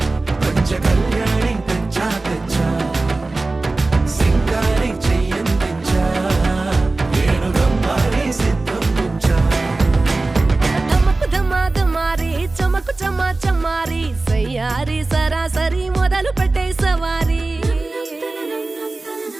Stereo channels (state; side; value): quieter; left; 3.2 dB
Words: పంచ కళ్యాణి తెచ్చా తెచ్చా సింగారి చెయ్యందించా ఏనుగమ్మారి సిద్ధందించా ధమకు ధమ్మా ధమ్మారి చమకు చమ్మా చమ్మారి సయ్యారి సరాసరి మొదలు పెట్టే సవారి